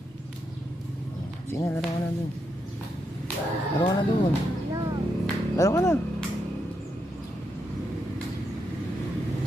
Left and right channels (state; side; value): normal; both; correlation 0.82